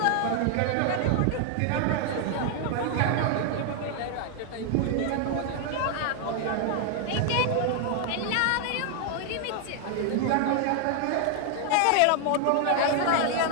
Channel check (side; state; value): both; different; correlation 0.00